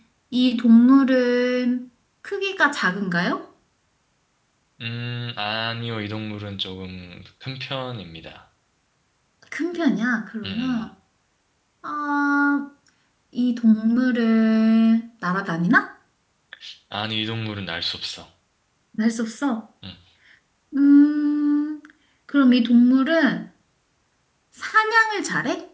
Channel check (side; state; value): both; identical; correlation 1.00